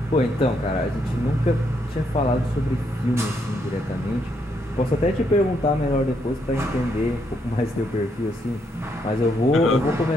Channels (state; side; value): normal; both; correlation 0.76